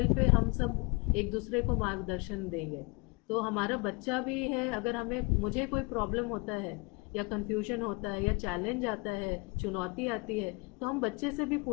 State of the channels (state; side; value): quieter; right; 28.8 dB